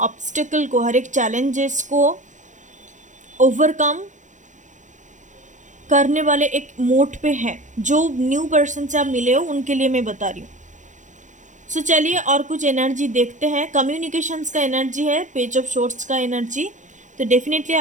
ऑब्स्टेकल को, हर एक चैलेंजेस को ओवरकम करने वाले एक मोड पे है। जो न्यू पर्सन से आप मिले हो उनके लिए मैं बता रही हूँ। सो चलिए और कुछ एनर्जी देखते हैं। कम्युनिकेशंस का एनर्जी है, पेज ऑफ शॉर्ट्स का एनर्जी। तो डेफिनेटली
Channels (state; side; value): late; left; 0.36 ms